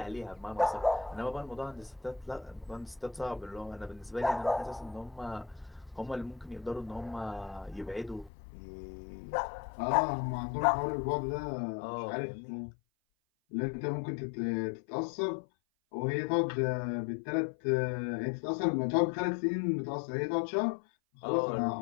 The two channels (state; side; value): drops out; right; at 8.3 s